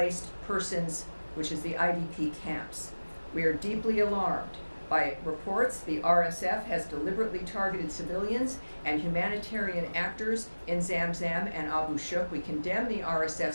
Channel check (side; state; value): both; inverted; correlation -1.00